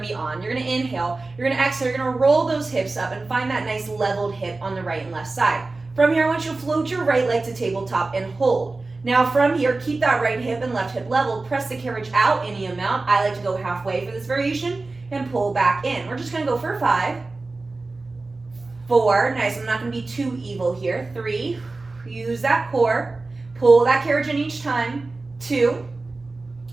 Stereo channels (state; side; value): quieter; left; 3.4 dB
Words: to be on. You're going to inhale, you're going to exhale, you're going to roll those hips up and find that nice leveled hip on the right and left side. From here, I want you to float your right leg to tabletop and hold. Now from here, keep that right hip and left hip leveled. Press the carriage out any amount. I like to go halfway for this variation and pull back in. We're just going to go for 5, 4, nice, I'm not going to be too evil here. 3, use that core, pull that carriage in each time. 2,